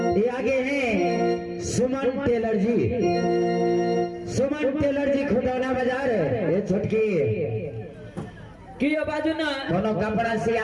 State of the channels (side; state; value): both; identical; correlation 1.00